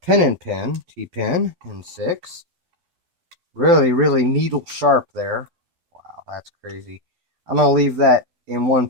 and pin, T-pin in 6. Really, really needle sharp there. Wow, that's crazy. I'm going to leave that in one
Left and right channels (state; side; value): late; left; 12 ms